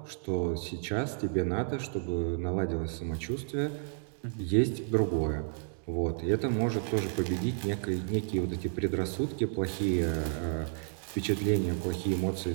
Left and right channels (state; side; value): silent; left; digital silence